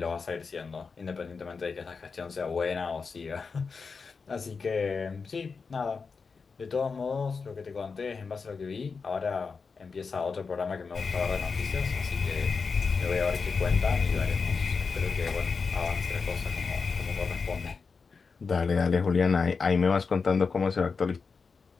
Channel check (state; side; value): quieter; right; 5.0 dB